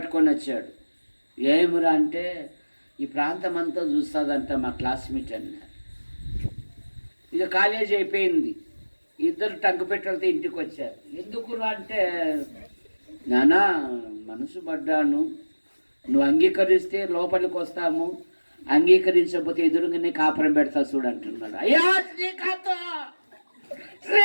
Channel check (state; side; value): inverted; both; correlation -1.00